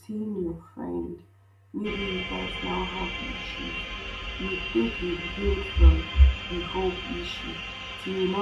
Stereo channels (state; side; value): identical; both; correlation 1.00